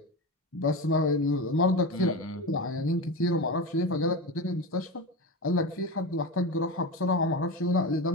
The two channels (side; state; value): both; normal; correlation 0.21